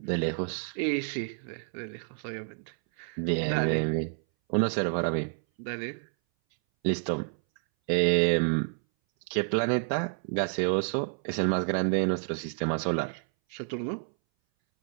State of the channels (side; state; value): left; silent; 58 dB below the other